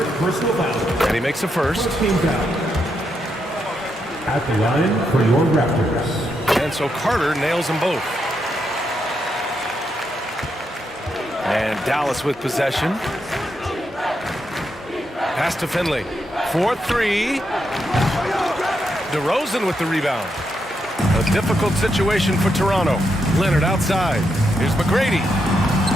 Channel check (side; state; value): both; normal; correlation 0.81